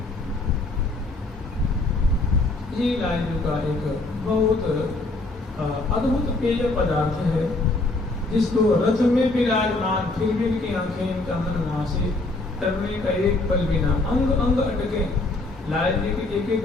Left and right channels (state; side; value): quieter; right; 3.1 dB